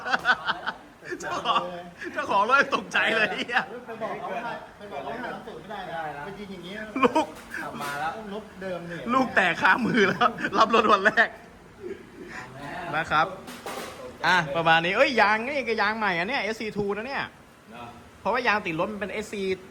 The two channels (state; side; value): identical; both; correlation 1.00